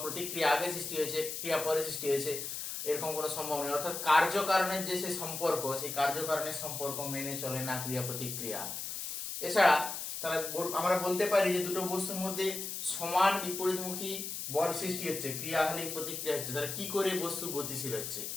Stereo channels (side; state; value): left; noise; hiss, 5 dB below the sound